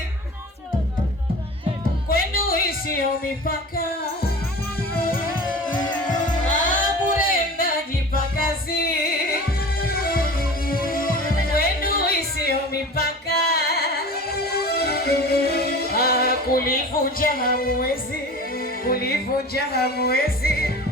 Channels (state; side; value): normal; both; correlation 0.37